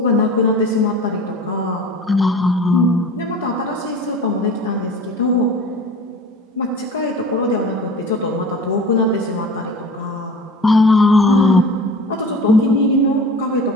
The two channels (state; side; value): normal; both; correlation 0.38